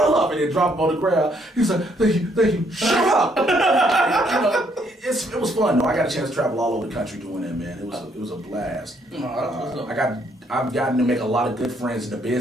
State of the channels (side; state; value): both; normal; correlation 0.70